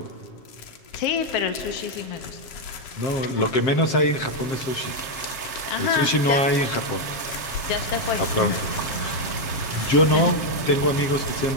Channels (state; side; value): late; right; 7.5 ms